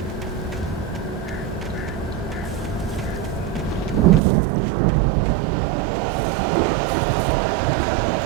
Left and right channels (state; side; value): drops out; left; at 4.2 s